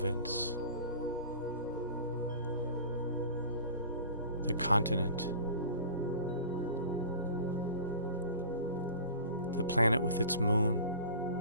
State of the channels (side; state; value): both; inverted; correlation -0.41